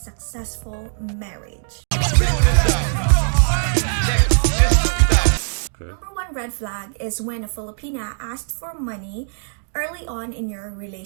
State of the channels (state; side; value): silent; left; 65 dB below the other